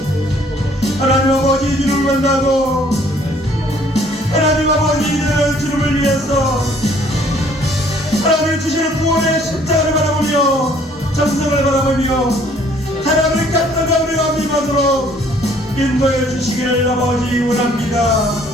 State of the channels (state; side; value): normal; both; correlation 0.59